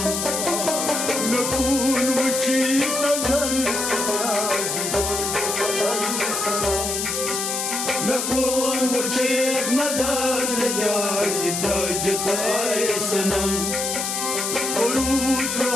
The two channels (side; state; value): left; noise; hiss, 1 dB below the sound